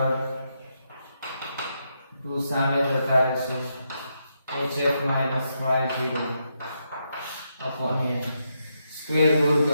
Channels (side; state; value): both; inverted; correlation -0.81